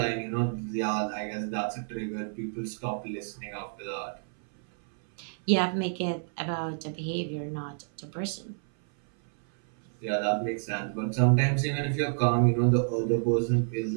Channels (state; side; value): silent; left; 57 dB below the other